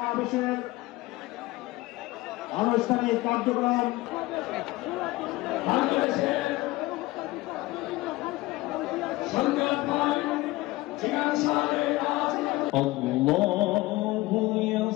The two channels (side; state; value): right; quieter; 19.7 dB